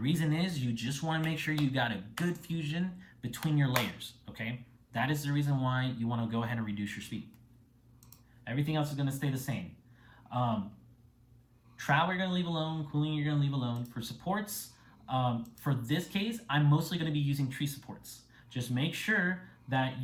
is you just wanna make sure you got a good fusion between your layers, okay? That is the reason why you wanna go ahead and reduce your speed. Everything else is gonna stay the same. Travel you're gonna leave alone, cooling you're gonna leave alone. For supports, for this case, I'm mostly gonna be using tree supports. Just make sure that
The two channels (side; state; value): both; identical; correlation 1.00